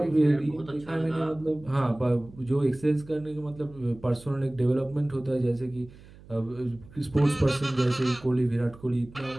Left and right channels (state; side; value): noise; right; hum, 21 dB below the sound